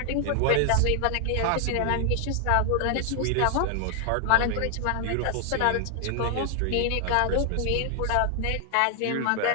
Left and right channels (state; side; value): different; both; correlation 0.00